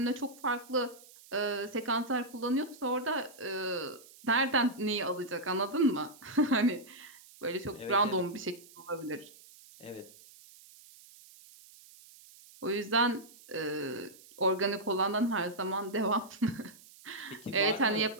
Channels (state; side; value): noise; right; hiss, 22 dB below the sound